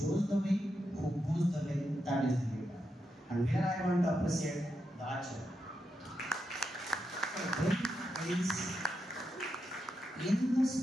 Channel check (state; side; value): normal; both; correlation 0.85